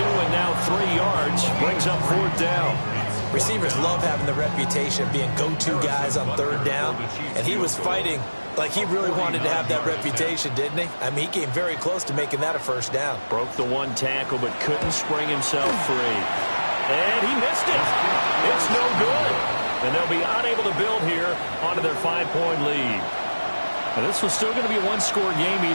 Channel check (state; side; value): inverted; both; correlation -1.00